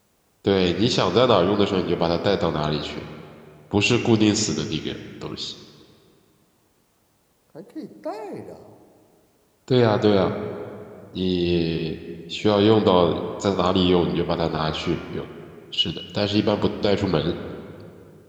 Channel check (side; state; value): both; identical; correlation 1.00